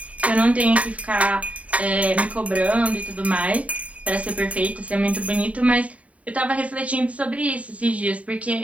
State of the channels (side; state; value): left; late; 0.067 ms